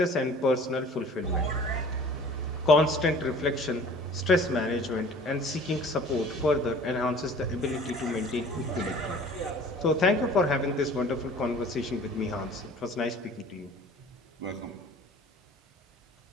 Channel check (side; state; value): both; normal; correlation 0.47